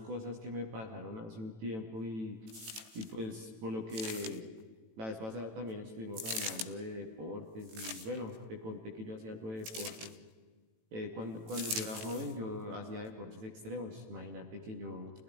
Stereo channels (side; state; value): left; late; 18 ms